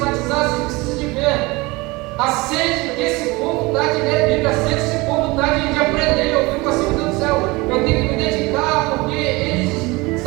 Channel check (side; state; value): left; quieter; 23.3 dB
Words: você precisa de ver. A sede que esse povo dá de ler a Bíblia, a sede que esse povo dá de aprender. Eu fico assim, meu Deus do céu, eu tenho que me dedicar, porque eles,